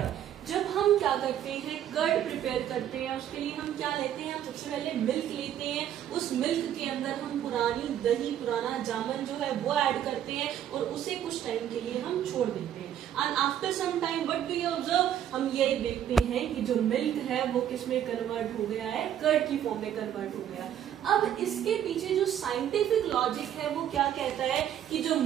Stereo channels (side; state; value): left; quieter; 10.3 dB